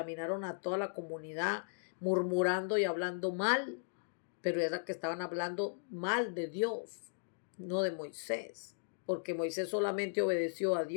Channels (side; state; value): right; silent; digital silence